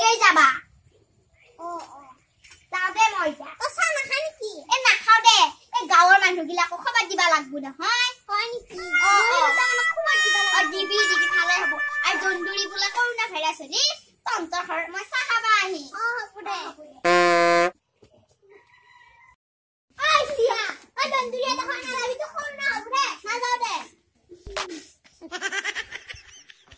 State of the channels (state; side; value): identical; both; correlation 1.00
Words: যাবা ও যাবে মই যা তো চা না খানি কি এ না খাও দে এ গাঁৱৰ মানুহগিলাকো খবৰ দিবা লাগবো না হয় নেকি ও খবৰ দিবা লাগবো দিবি খালে হ'ব আৰু দন্দুৰি বলা কৰোনা ভাইৰাছ নি তন্তৰ ঘৰ মই চাহ খাবা আহি হ'ব দে আই সিয়া আ দন্দুরি এটা খানা লাগি তো কৰোনা হ'ব দে না যাও দে